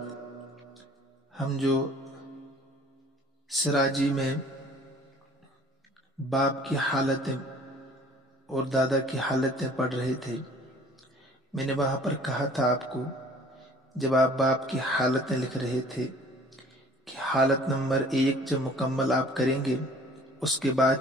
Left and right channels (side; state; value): both; normal; correlation 0.51